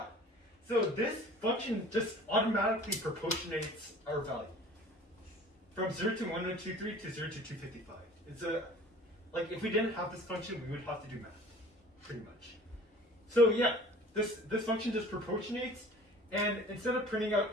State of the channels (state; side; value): normal; both; correlation 0.46